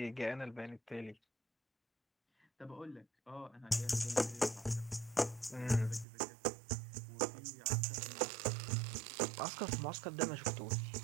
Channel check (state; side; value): drops out; left; at 6.1 s